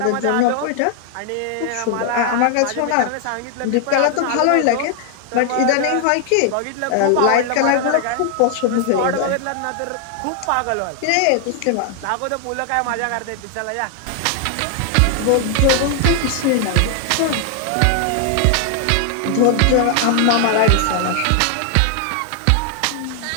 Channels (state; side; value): different; both; correlation 0.00